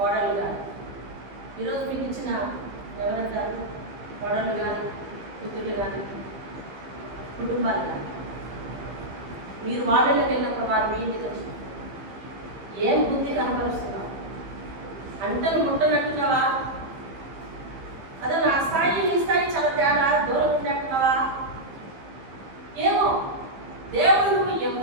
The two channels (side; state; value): left; late; 15 ms